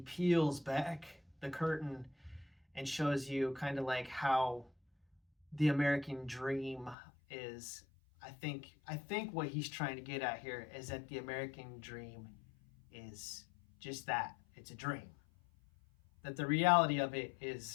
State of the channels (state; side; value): drops out; right; at 7.0 s